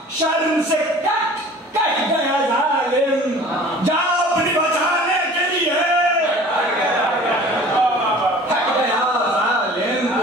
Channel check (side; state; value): both; normal; correlation 0.45